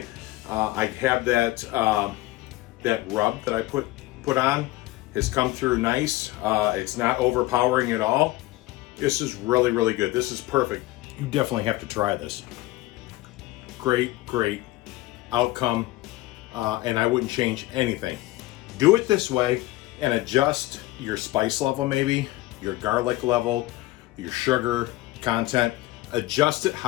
I have that that rub that I put on has come through nice. It's not overpowering at all. This is really, really good. This is perfect. You definitely have to try this. Great, great outcome, and I wouldn't change anything. Do it this way and adjust your spice level, maybe your garlic level, your sugar content. Adjust it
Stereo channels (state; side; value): quieter; right; 18.0 dB